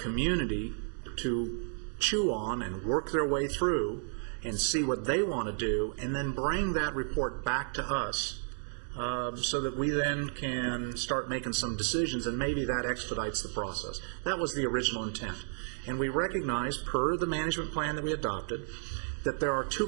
to chew on and work their way through and see what they want to do, and then bring that report back to us so that we then can start making some decisions, and maybe that expedites the process. That was the original intent. And we recognized, per the management plan that we adopted, that there are two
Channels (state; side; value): silent; left; digital silence